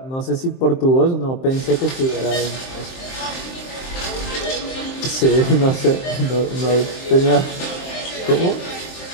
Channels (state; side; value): late; right; 23 ms